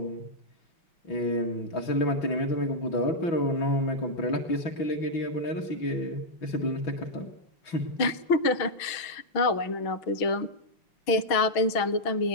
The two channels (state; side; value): late; right; 6.2 ms